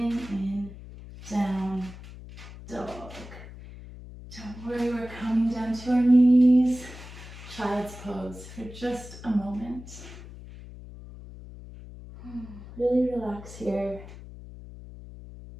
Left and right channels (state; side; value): noise; left; hum, 15 dB below the sound